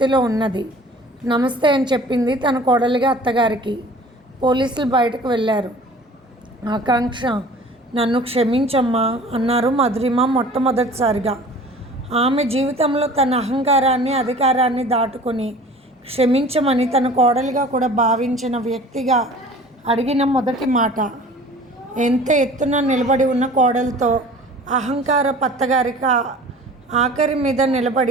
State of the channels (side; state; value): both; normal; correlation 0.45